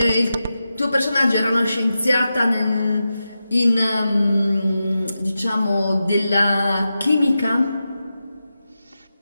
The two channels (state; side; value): inverted; both; correlation -0.91